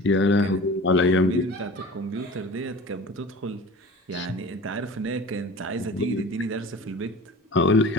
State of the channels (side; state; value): both; normal; correlation 0.39